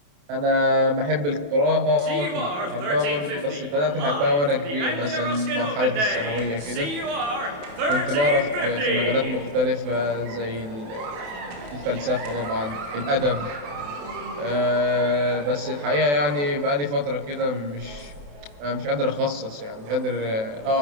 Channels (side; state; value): left; late; 28 ms